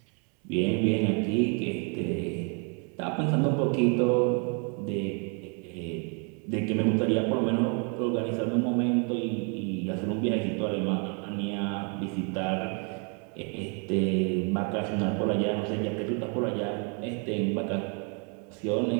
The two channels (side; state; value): left; quieter; 37.6 dB